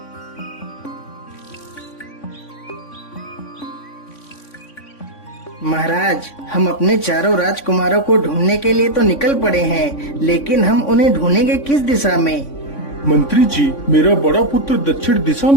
महाराज, हम अपने चारों राजकुमारों को ढूंढने के लिए तो निकल पड़े हैं, लेकिन हम उन्हें ढूंढेंगे किस दिशा में? मंत्री जी, मेरा बड़ा पुत्र दक्षिण दिशा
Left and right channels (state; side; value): late; right; 3.6 ms